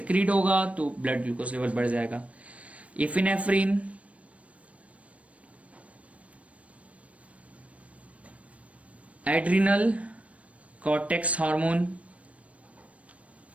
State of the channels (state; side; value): late; left; 0.064 ms